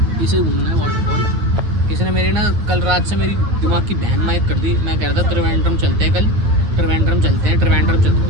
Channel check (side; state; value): left; late; 8.1 ms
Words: इसे घूमना है वाटरफॉल। इसने मेरी ना कल रात से मेरी दिमाग की बहन माइक कर दी। मैं कह रहा था त्रिवेंद्रम चलते हैं, कल त्रिवेंद्रम चलते हैं,